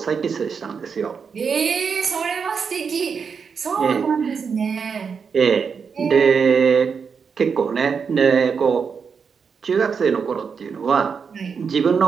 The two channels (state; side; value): quieter; left; 6.0 dB